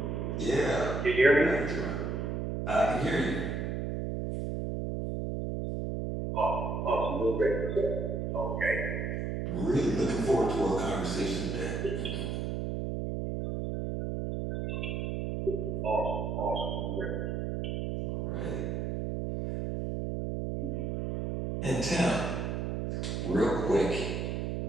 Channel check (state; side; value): noise; right; hum, 2 dB below the sound